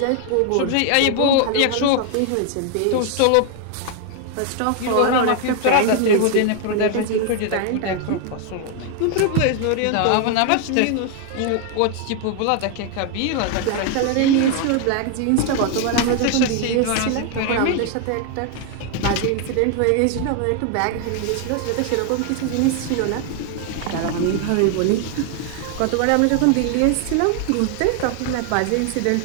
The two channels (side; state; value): both; different; correlation 0.00